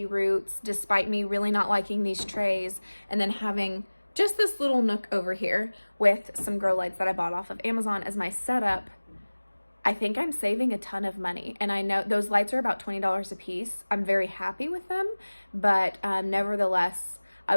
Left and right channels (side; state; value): both; inverted; correlation -1.00